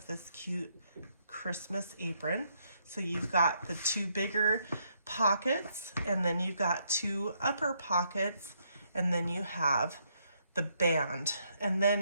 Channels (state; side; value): inverted; both; correlation -0.74